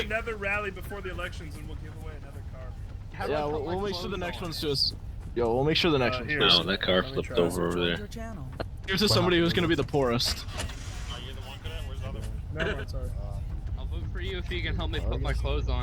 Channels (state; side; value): identical; both; correlation 1.00